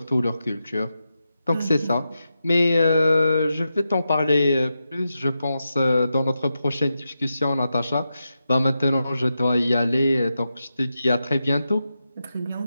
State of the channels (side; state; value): both; inverted; correlation -0.89